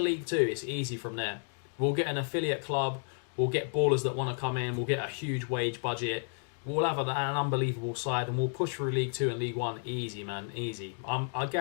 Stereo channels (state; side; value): silent; right; 57 dB below the other